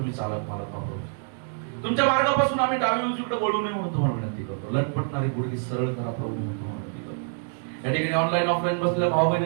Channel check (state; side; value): silent; left; 61 dB below the other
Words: चालक मालक प्रभूजी. तुमच्या मार्गापासून आम्ही डावी उजवीकडे वळू नये म्हणून तुम्हाला विनंती करतो. लटपटणारी गुडघे सरळ करा प्रभू म्हणून तुम्हाला विनंती करतो. या ठिकाणी ऑनलाईन ऑफलाईन बसलेल्या भाऊ